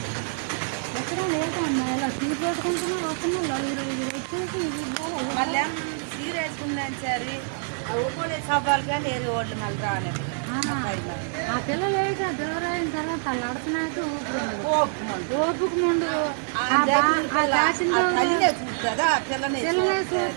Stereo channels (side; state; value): left; silent; 61 dB below the other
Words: ఎక్కడ లేదమ్మా ఇలా తీసేసుకుంటున్నా వస్తుంది 45 వచ్చేసి మళ్ళీ సీర వేసుకున్నాను సరే అది ఒక్కోలే సబ్బాలు కానీ ఏరు ఓట్లు మళ్ళీ రాలేదు. ఆ పిల్ల లేదు డెలివరీ అయిన తర్వాత అడుగుతున్నాడు ఓపుకు ముందు